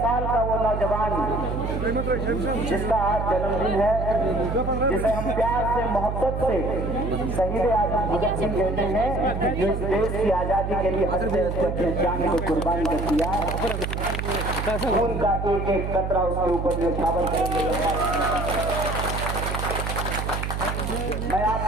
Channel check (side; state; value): right; noise; hum, 3 dB below the sound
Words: साल का वो नौजवान जिसका आज जन्मदिन है, जिसे हम प्यार से मोहब्बत से शहीद आजम भगत सिंह कहते हैं, जो इस देश की आजादी के लिए हंसते हंसते अपने जान को कुर्बानी कर दिया। खून का एक एक कतरा उसके ऊपर न्यौछावर करेंगे। मैं